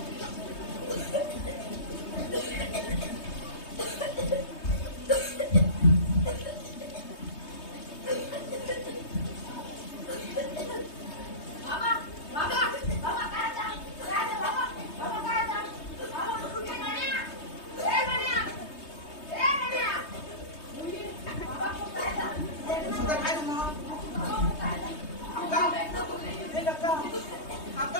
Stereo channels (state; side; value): late; right; 3.2 ms